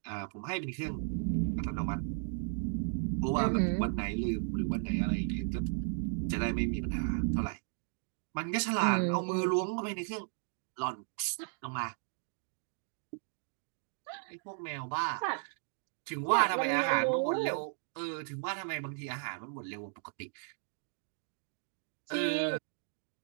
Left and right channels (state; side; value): silent; left; 54 dB below the other